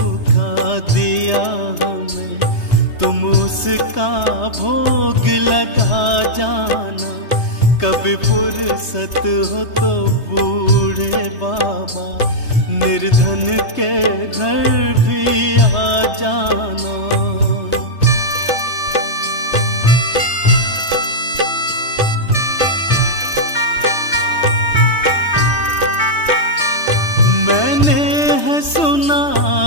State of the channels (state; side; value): late; right; 3.2 ms